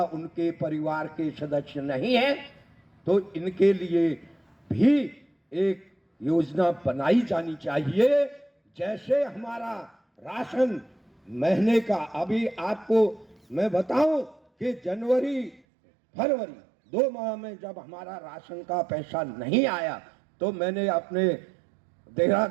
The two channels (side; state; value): left; drops out; at 15.6 s